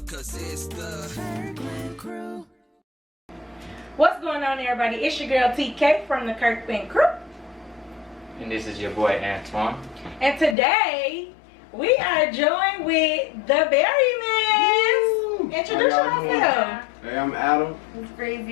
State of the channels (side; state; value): right; drops out; at 10.6 s